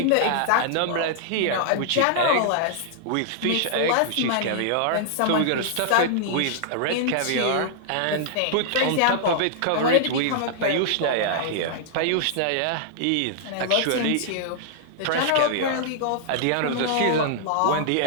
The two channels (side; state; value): both; different; correlation -0.01